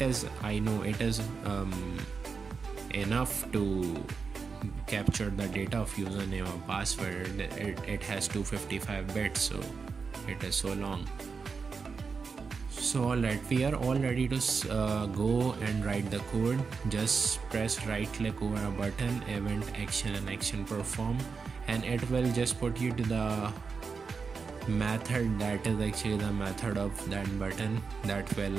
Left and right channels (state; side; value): quieter; left; 5.1 dB